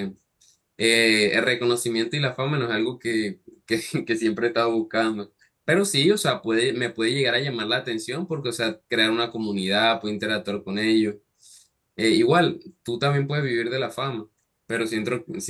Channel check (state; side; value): identical; both; correlation 1.00